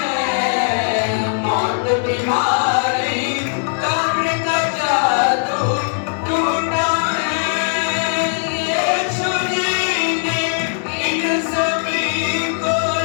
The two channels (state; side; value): silent; right; digital silence